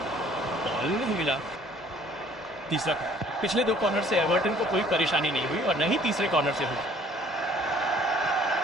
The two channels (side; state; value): both; normal; correlation 0.57